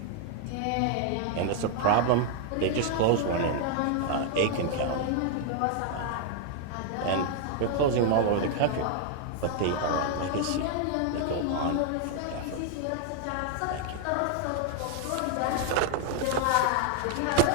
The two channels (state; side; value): different; both; correlation 0.00